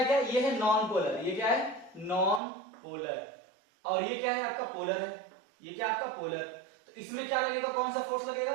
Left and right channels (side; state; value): left; drops out; at 2.4 s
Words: क्या? ये है नॉन पोलर। ये क्या है? Non polar. और ये क्या है? आपका पोलर है। ये क्या आपका पोलर। तो इसमें क्या लगेगा? कौन सा फोर्स